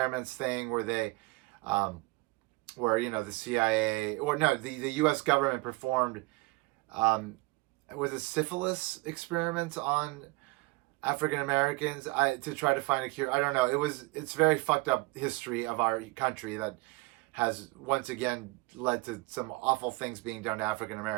thing where they, where, you know, the CIA, or no, the U.S. government performed, was it syphilis experiments on African Americans to try to find a cure? I don't know. It's very fucked up history of our country that has once again led to some awful things being done to African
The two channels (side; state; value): left; quieter; 24.7 dB